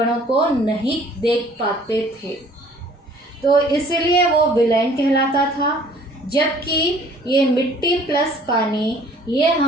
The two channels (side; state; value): both; normal; correlation 0.55